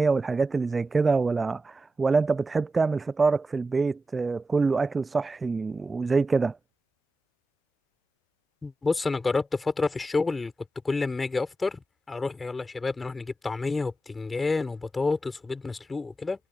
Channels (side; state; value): both; normal; correlation 0.93